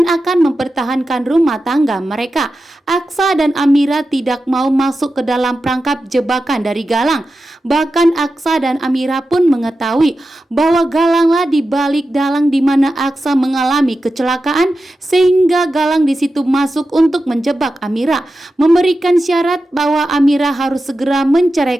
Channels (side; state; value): both; normal; correlation 0.92